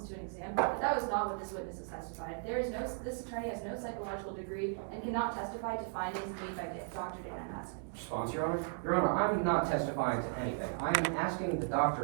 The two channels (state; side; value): silent; left; 54 dB below the other